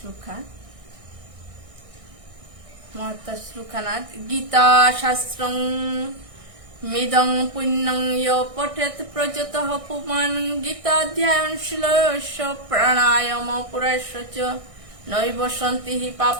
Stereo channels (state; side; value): late; left; 1.6 ms